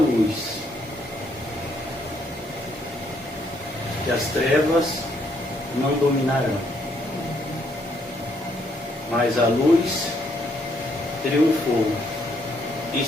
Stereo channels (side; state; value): both; normal; correlation 0.71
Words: que as trevas não dominarão, mas a luz triunfou e